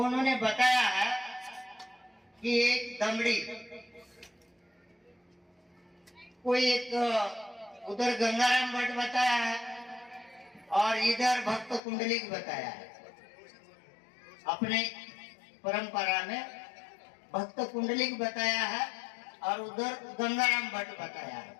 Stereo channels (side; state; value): right; drops out; at 11.8 s